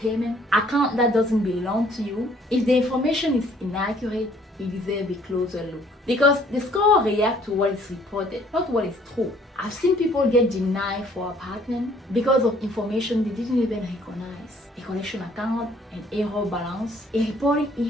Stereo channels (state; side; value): normal; both; correlation 0.60